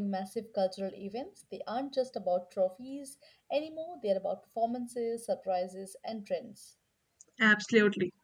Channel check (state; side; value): identical; both; correlation 1.00